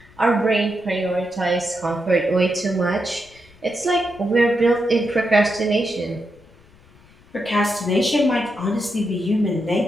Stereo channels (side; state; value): left; noise; rumble, 28 dB below the sound